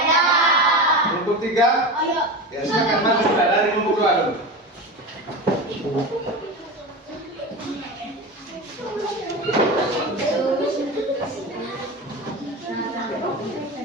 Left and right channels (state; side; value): normal; both; correlation 0.25